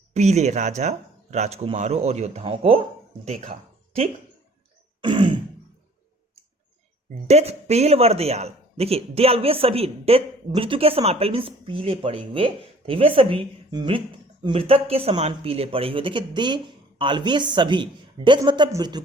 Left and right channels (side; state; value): both; normal; correlation 0.53